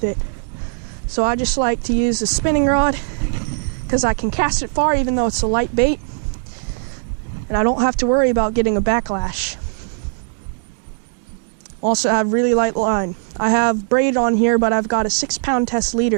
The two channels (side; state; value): left; silent; digital silence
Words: it. So I just like to use a spinning rod, because I can cast it far even though it's a light bait, and I don't have to worry about getting a backlash. Also, I have really light line. I have braid on here, but I've got a 6-pound test